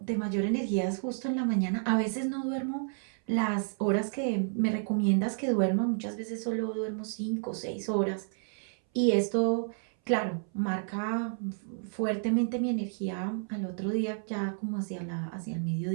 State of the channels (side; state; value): left; silent; 57 dB below the other